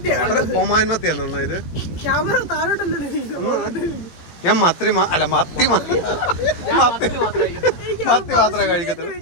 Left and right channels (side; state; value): right; late; 17 ms